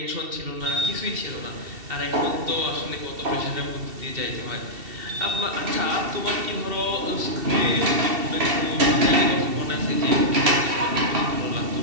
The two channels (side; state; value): left; late; 2.7 ms